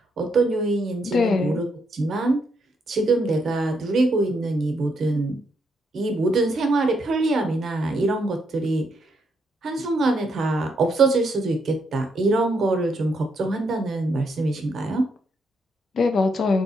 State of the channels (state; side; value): normal; both; correlation 0.77